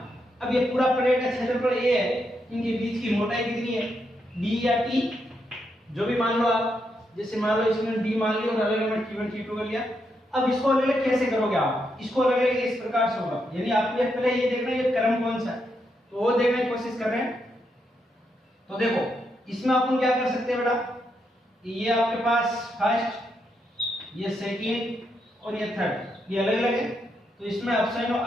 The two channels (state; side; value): normal; both; correlation 0.81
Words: अब ये पूरा प्लेट का क्षेत्रफल A है, इनके बीच की मोटाई कितनी है D या T, जो भी मान लो आप। जैसे मान लो इसमें D मान लिया और अलग अलग T1 T2 कर लिया। अब इसको अलग अलग कैसे करोगे आप, इसको अलग अलग इस प्रकार से होगा, यानी आपको पहले ये देखना है ये क्रम कौन सा है, तो वो देखने की कोशिश कर रहे हैं। तो देखो इसमें अपन क्या कर सकते हैं बेटा, ये आपके पास फर्स्ट, ये सेकंड और ये थर्ड, ये अलग अलग है। तो इसमें एप्सिलॉन